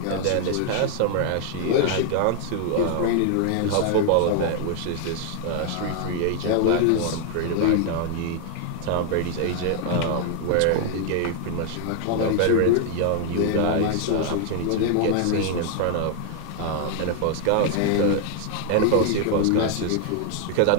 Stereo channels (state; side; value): different; both; correlation 0.00